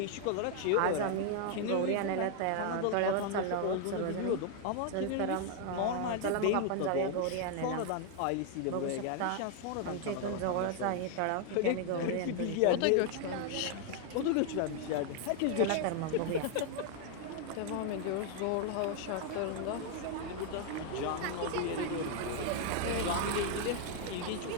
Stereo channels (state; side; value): different; both; correlation 0.00